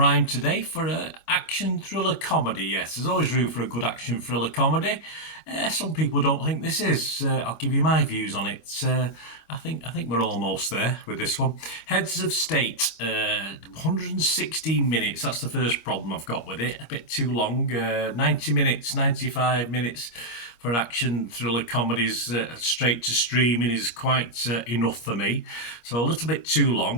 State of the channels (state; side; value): late; right; 25 ms